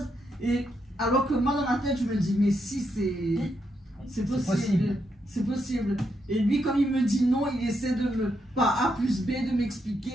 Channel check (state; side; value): normal; both; correlation 0.80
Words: Et alors que moi, dans ma tête, je me dis, mais si, c'est possible. C'est possible. Et lui, comme il me dit non, il essaie de me, par A plus B, de